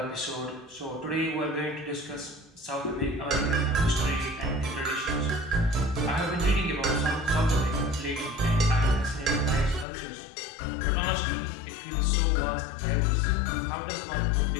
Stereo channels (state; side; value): drops out; right; at 9.9 s